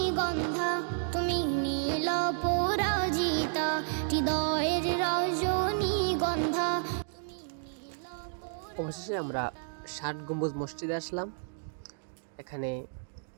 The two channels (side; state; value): left; silent; digital silence